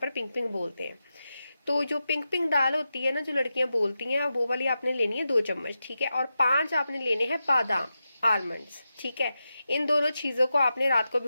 पिंक पिंक बोलते हैं। तो जो पिंक पिंक दाल होती है ना, जो लड़कियां बोलती हैं, वो वाली आपने लेनी है 2 चम्मच, ठीक है। और 5 आपने लेने हैं बादाम, आलमंड्स, ठीक है। इन दोनों चीजों को आपने रात को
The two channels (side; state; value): both; inverted; correlation -0.90